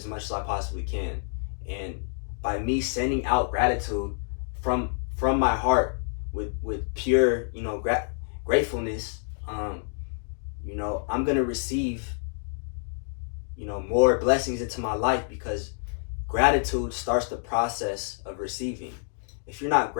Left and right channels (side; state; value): right; silent; digital silence